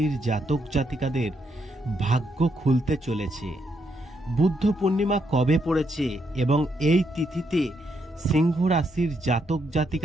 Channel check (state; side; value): normal; both; correlation 0.77